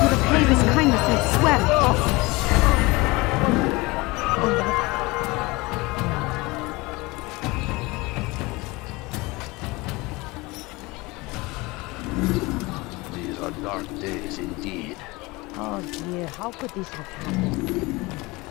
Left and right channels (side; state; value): right; quieter; 23.3 dB